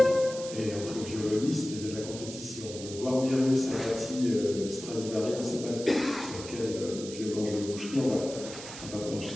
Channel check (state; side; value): noise; right; hiss, 11 dB below the sound